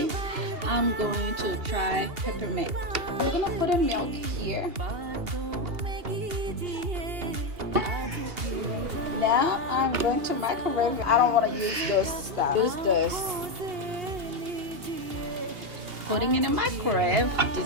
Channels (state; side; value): late; left; 2.8 ms